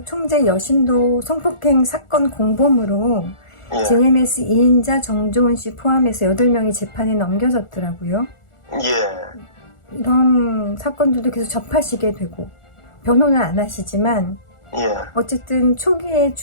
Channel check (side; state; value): right; late; 1.4 ms